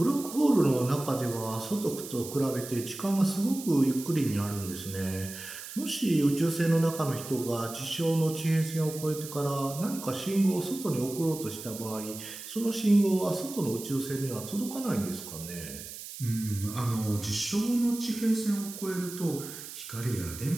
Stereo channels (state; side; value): noise; right; hiss, 11 dB below the sound